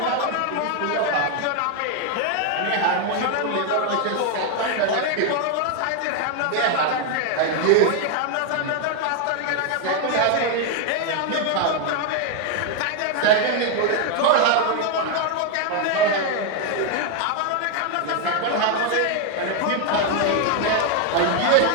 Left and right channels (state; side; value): different; both; correlation 0.00